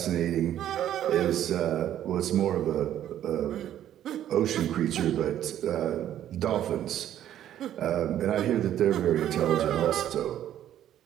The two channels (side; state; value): left; quieter; 11.4 dB